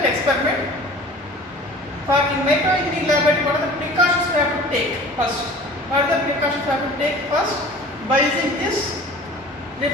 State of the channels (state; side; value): normal; both; correlation 0.44